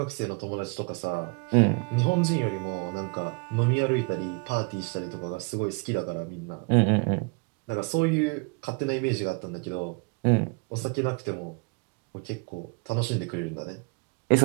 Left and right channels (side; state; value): left; quieter; 31.9 dB